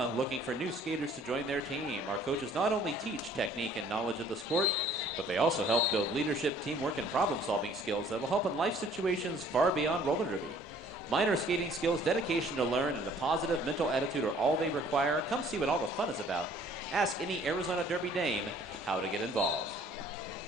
looking for new skaters to join their team. Our coaches not only teach technique and knowledge of the sport, but they also help build leadership, teamwork, and problem-solving skills that will help in life situations far beyond roller derby. Minor skating skills, dedication to learn, and a positive mental attitude are all they require. Come see what all the fun is about. Ask any Arizona Derby Dame how to get involved.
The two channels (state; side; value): normal; both; correlation 0.56